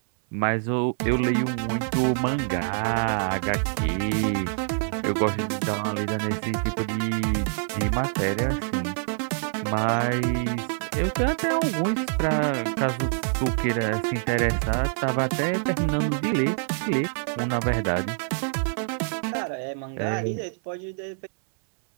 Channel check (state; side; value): silent; left; 61 dB below the other